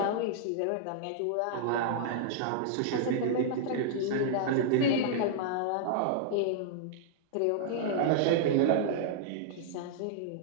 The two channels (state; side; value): different; both; correlation -0.01